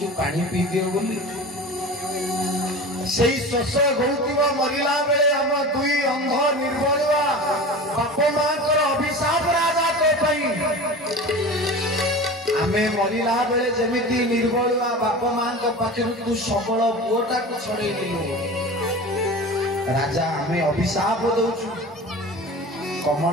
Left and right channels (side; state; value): both; normal; correlation 0.33